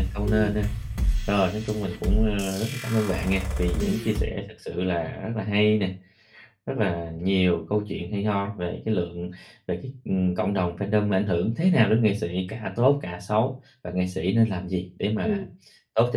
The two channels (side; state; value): both; identical; correlation 1.00